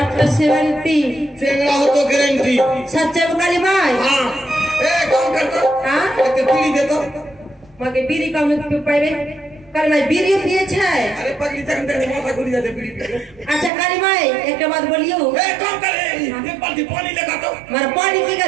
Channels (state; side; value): drops out; left; at 13.7 s